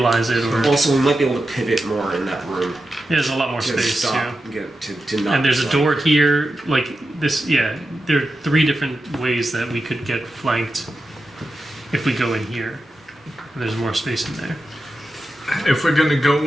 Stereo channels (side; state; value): both; normal; correlation 0.90